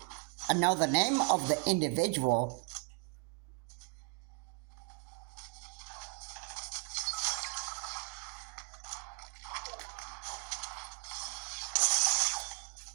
I know the name of the individual.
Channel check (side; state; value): left; quieter; 37.4 dB